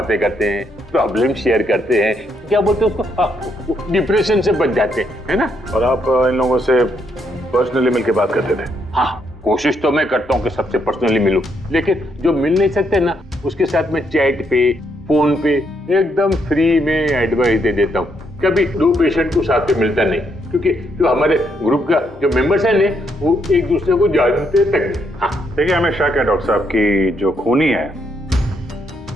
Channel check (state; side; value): normal; both; correlation 0.75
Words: करते हैं, प्रॉब्लम शेयर करते हैं, क्या बोलते हैं उसको, डिप्रेशन से बच जाते हैं, है ना? और आप इन लोगों से पर्सनली मिलकर बात करते थे? हाँ, कोशिश तो मैं करता हूँ कि सबसे पर्सनली मिलूं, लेकिन जो मिल नहीं सकते ना, उसके साथ में चैट पे, फोन पे एकदम फ्री में एडवाइस दे देता हूँ। कभी दो पेशेंट को साथ में मिलता नहीं, क्योंकि जो हमारे ग्रुप का जो मेंबर्स हैं ने, वो एक दूसरे को जानते तक नहीं। हाँ, देखिए, हमें शक है डॉक्टर साहब की जो खूनी है